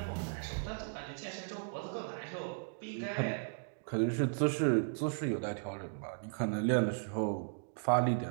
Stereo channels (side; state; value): left; silent; digital silence